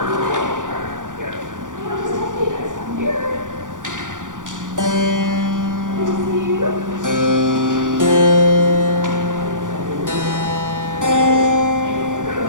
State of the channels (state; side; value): late; left; 0.88 ms